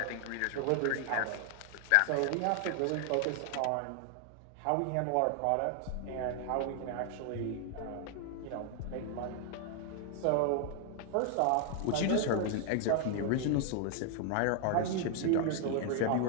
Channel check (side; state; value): both; different; correlation 0.00